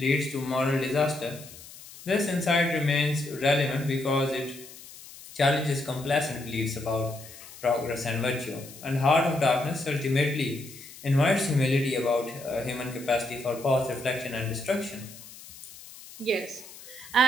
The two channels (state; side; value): noise; left; hiss, 17 dB below the sound